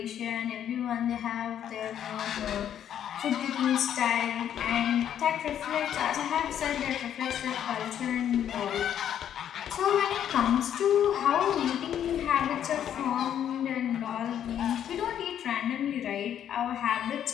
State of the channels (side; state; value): right; quieter; 9.9 dB